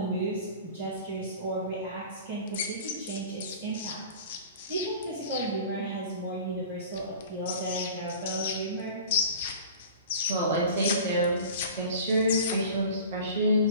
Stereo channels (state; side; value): inverted; both; correlation -0.39